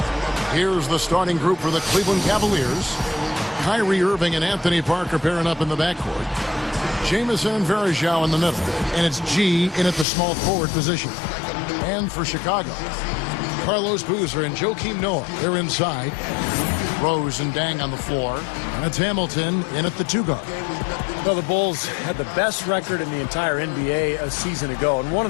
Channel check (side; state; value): right; drops out; at 10.1 s